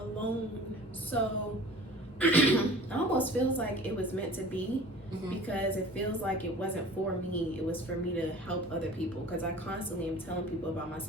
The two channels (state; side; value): normal; both; correlation 0.43